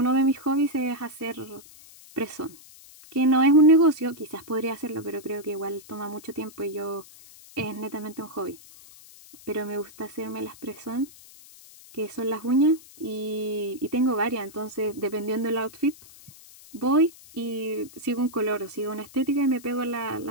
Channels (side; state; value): left; noise; hiss, 21 dB below the sound